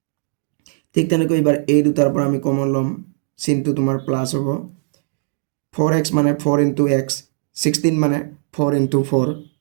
ঠিক তেনেকৈ এবাৰ এই দুটাৰ পৰা আমি কমন ল'ম চিনটো তোমাৰ প্লাস হ'ব 4x মানে 4 into x 16 মানে 4 into 4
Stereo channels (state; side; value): silent; left; digital silence